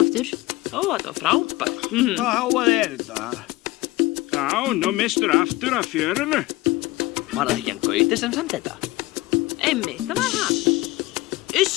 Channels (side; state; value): right; quieter; 19.8 dB